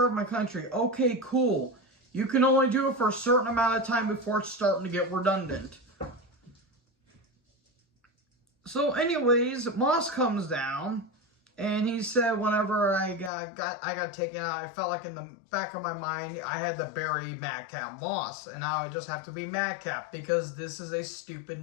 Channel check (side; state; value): right; drops out; at 13.3 s